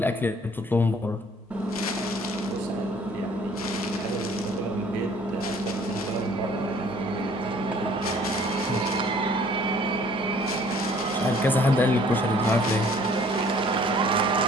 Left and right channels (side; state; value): both; normal; correlation 0.56